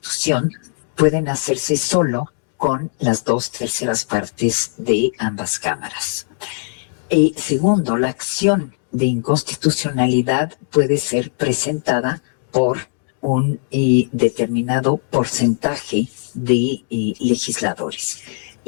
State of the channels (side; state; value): right; silent; digital silence